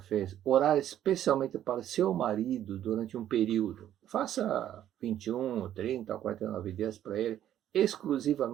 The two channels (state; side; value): quieter; left; 11.3 dB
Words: orar especialmente para seu marido durante um período? Faça 21, 30, 49 dias para ele,